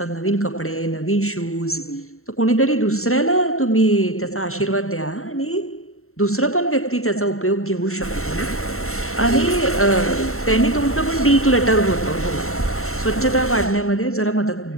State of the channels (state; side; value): late; right; 0.63 ms